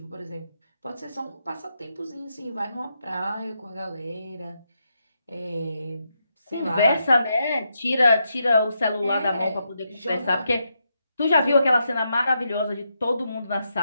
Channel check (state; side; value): inverted; both; correlation -0.82